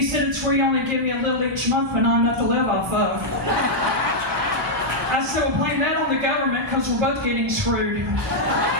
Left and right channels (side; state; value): both; normal; correlation -0.05